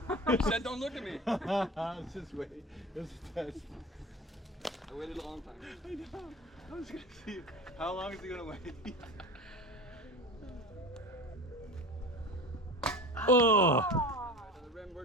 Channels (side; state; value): both; normal; correlation 0.34